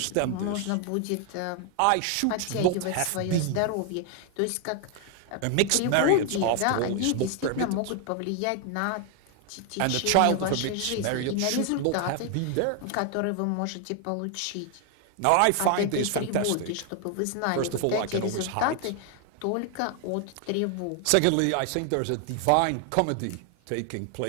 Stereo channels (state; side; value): different; both; correlation 0.00